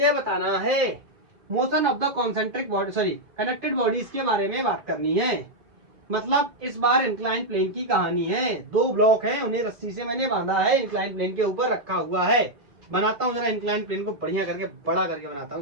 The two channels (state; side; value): late; left; 2.4 ms